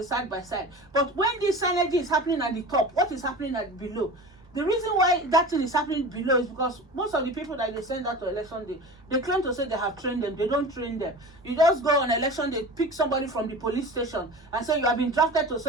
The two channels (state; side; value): normal; both; correlation 0.34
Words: side by side. But when this synergy is happening at the top, what is happening at below? The reason why that thing is happening below is because most of the people that they send out to election day, they claim to say they have trained them. They don't train them. You just go on election day, pick somebody from the police station and say you have been drafted to